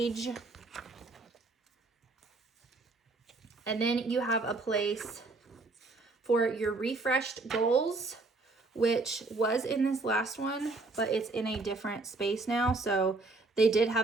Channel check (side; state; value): left; quieter; 3.4 dB